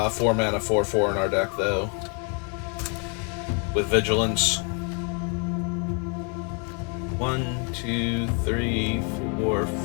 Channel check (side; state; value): right; quieter; 38.0 dB